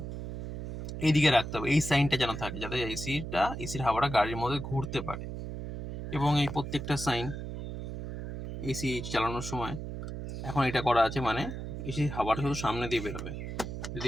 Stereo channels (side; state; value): right; noise; hum, 7 dB below the sound